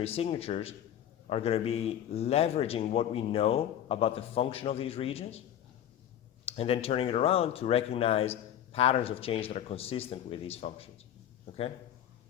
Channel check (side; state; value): right; quieter; 10.7 dB